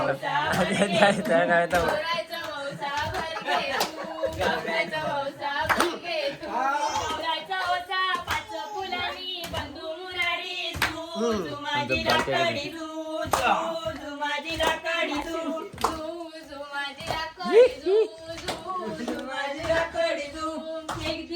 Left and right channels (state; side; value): identical; both; correlation 1.00